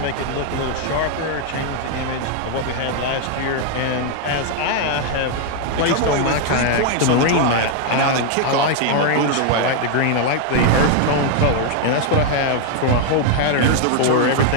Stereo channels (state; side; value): different; both; correlation 0.00